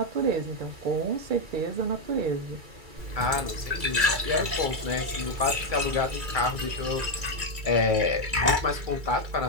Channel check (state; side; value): late; left; 2.3 ms